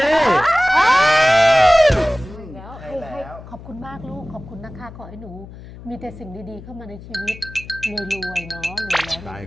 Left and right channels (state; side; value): noise; left; hum, 16 dB below the sound